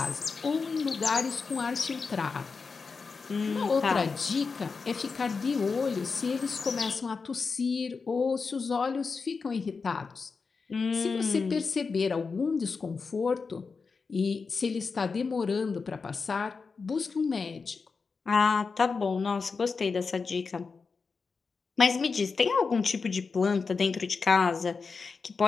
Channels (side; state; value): right; quieter; 4.8 dB